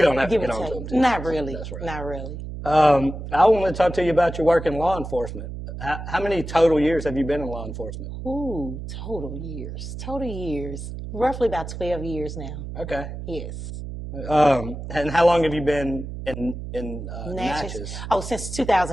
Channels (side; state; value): right; noise; hum, 8 dB below the sound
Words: don't have to get on to him too. Not really. That's right. Not really. I want to talk to you about your work in law enforcement. How many total years have you been in law enforcement? Ooh, total years. Roughly about 12 years now. Okay. Yes. And how long have you been in Natchez? Oh, since